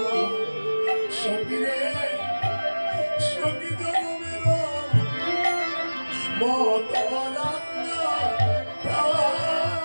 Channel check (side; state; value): both; inverted; correlation -1.00